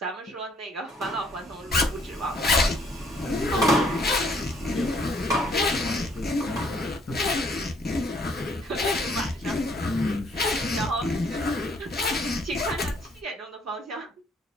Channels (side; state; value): both; normal; correlation 0.64